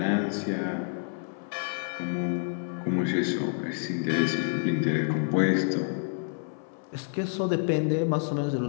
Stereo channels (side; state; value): right; silent; 59 dB below the other